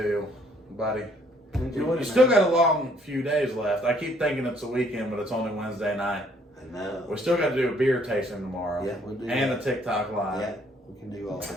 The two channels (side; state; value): both; normal; correlation 0.64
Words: buddy. You still got a long few days left. I keep thinking it's a weekend, but it's only Wednesday night. I know. We still got to do a beer tasting tomorrow. Yeah, we'll do and that. a TikTok live. Yeah, we can do all